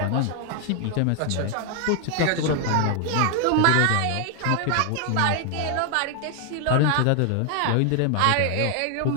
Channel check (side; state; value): both; different; correlation 0.00